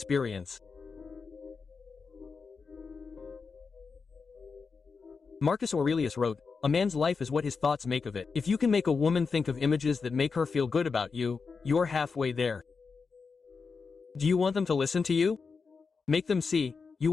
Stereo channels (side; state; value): right; quieter; 5.0 dB